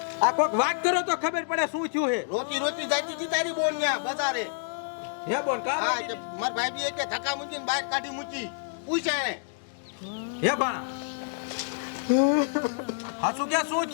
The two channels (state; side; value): silent; right; digital silence